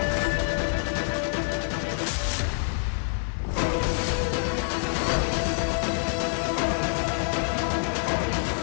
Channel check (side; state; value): right; silent; digital silence